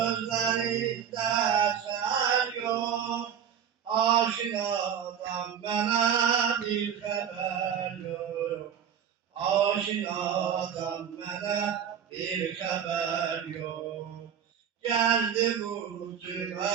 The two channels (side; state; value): left; quieter; 8.5 dB